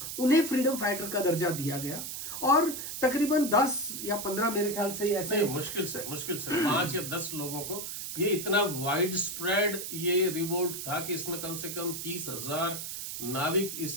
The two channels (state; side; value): noise; right; hiss, 6 dB below the sound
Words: उन्हें फ्रीडम फाइटर का दर्जा दिया गया। और तकरीबन 10 या 15 मेरे ख्याल से ऐसे मुश्किल से 5 या 10 लोगों को, ये इतना वाइड स्प्रेड ये रिवोल्ट था कि इसमें कम से कम 30,000